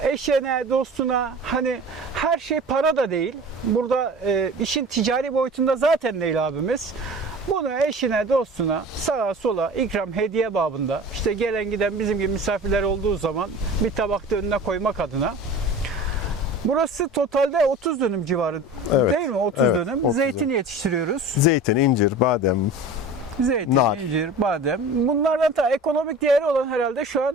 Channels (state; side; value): normal; both; correlation 0.38